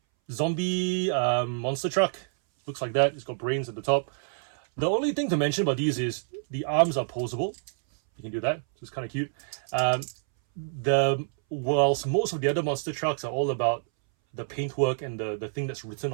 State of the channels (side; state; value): left; silent; 60 dB below the other